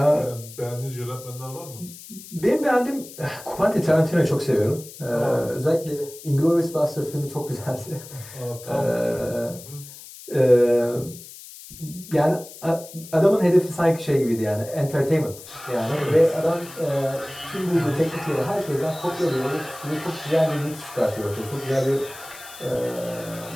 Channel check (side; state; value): left; noise; hiss, 16 dB below the sound